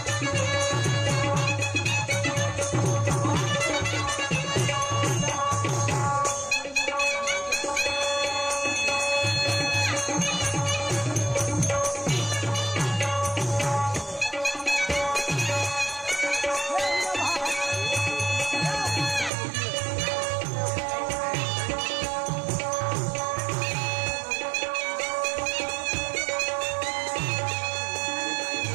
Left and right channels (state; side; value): drops out; left; at 19.3 s